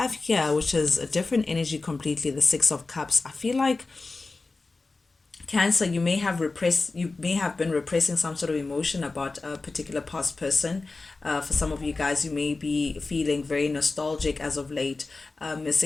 here, which is a different energy completely, the Six of Cups. I feel like, Cancer, you may have been repressing some sort of emotion about a particular past person. For some of you guys, you may be feeling very nostalgic as of late,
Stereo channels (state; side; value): quieter; right; 3.6 dB